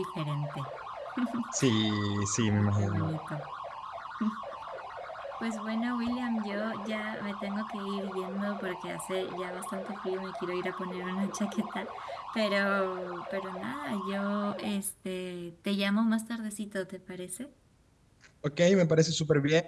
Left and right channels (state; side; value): identical; both; correlation 1.00